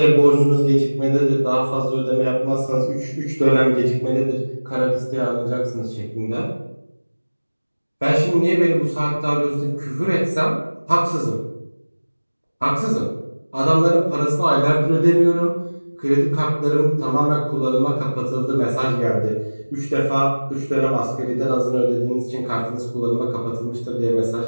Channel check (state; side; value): inverted; both; correlation -1.00